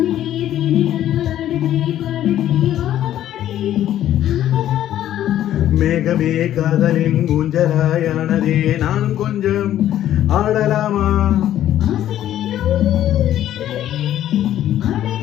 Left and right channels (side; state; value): right; quieter; 12.0 dB